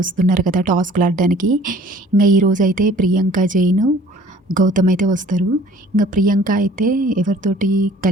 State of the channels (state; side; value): normal; both; correlation 0.52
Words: వస్తున్నారు కదా టాస్క్లు ఆడడానికి. ఇంకా ఈరోజు అయితే ప్రియాంక జైన్ గౌతమ్ అయితే వస్తారు. ఇంకా ప్రియాంక అయితే ఎవరితోటి